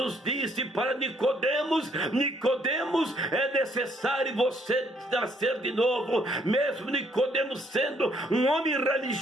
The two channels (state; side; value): normal; both; correlation 0.68